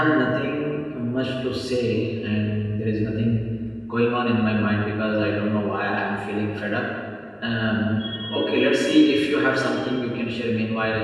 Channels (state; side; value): identical; both; correlation 1.00